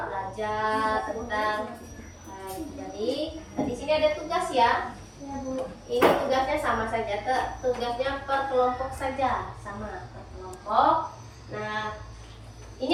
belajar tentang jadi di sini ada tugas ya. Ini tugasnya sama saja, tugasnya per kelompok saja, sama per kelompok. Nah, ini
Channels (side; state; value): both; identical; correlation 1.00